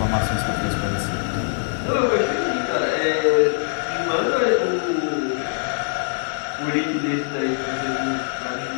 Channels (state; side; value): silent; right; 64 dB below the other